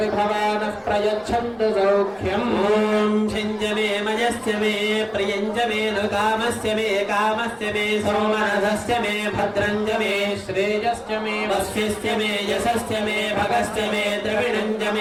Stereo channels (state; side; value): identical; both; correlation 1.00